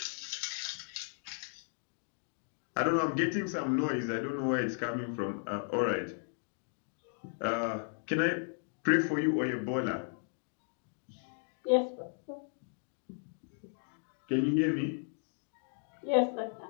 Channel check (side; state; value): right; silent; 54 dB below the other